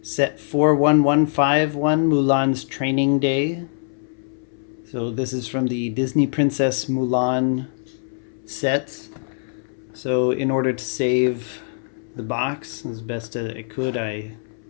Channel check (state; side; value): silent; right; 64 dB below the other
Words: set 41151, Mulan's Training Day. So this is from the Disney Princess Mulan sets. So in order to save the box as best as I could, I